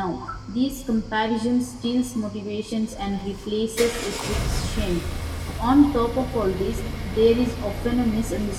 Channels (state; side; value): identical; both; correlation 1.00